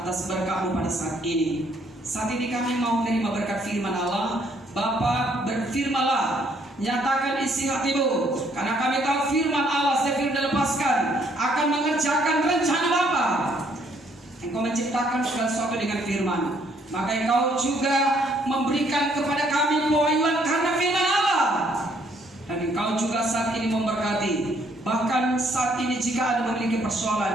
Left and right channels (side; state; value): both; normal; correlation 0.67